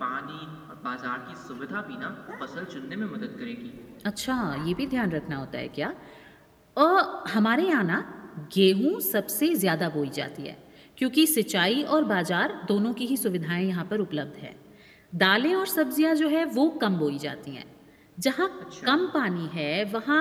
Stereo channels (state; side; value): identical; both; correlation 1.00